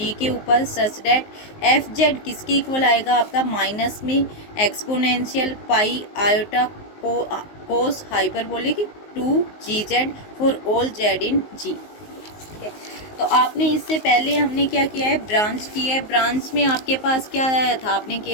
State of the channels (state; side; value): late; right; 19 ms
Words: के ऊपर सच डेट एफ जेड किसके इक्वल आएगा आपका, माइनस में exponential pi iota cos hyperbolic 2 GZ for all z in g. ठीक है, तो आपने इससे पहले हमने क्या किया है, ब्रांच किया है। ब्रांच में आपके पास क्या आया था, आपने